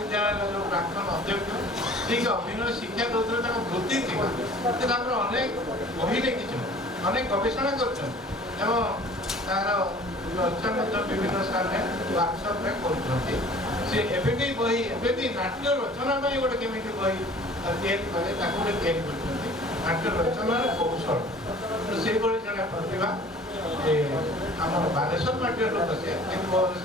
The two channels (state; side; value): normal; both; correlation 0.48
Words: ଯେଉଁ ପ୍ରାକ୍ତନ ଅଧ୍ୟକ୍ଷ ଠିକ ଅଭିନୟ ଶିକ୍ଷା ଦଉଥିଲେ, ତାଙ୍କ ବୃତ୍ତି ଥିଲା। ସେ ତାଙ୍କର ଅନେକ ବହି ଲେଖିଛନ୍ତି, ଅନେକ ଗବେଷଣା କରିଛନ୍ତି ଏବଂ ତାର ଚର୍ଚ୍ଚା ମଧ୍ୟ ବିଭିନ୍ନ ସ୍ଥାନରେ ୱାର୍କସପ୍ରେ କରୁଛନ୍ତି। ସେ ଏବେ ବି ବହି, ଏବେ ବି ନାଟ୍ୟ ରଚନା ପାଇଁ ଗୋଟେ କେମିତି ବହି ତିଆରି କଲେ ତାକୁ ଗୋଟେ ତିଆରି କରିଛନ୍ତି, ନାଟ୍ୟ ରଚନାର କୌଶଳ। ସେଇଭଳି ଜଣେ ପ୍ରତିଭା ଆମର ବାଲେଶ୍ୱର ମାଟିର ଲୋକ, ସେ